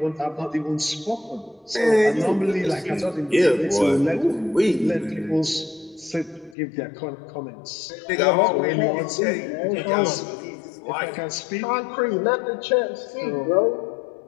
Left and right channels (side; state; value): right; drops out; at 6.6 s